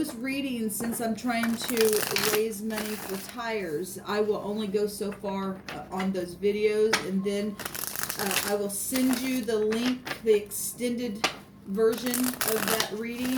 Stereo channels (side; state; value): both; identical; correlation 1.00